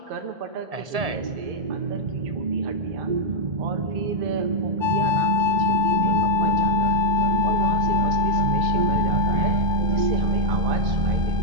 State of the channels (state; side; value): late; left; 1.7 ms